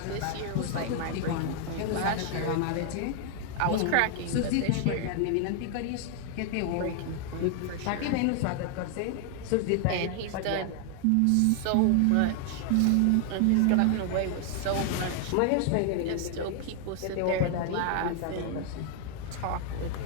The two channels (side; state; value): both; different; correlation 0.00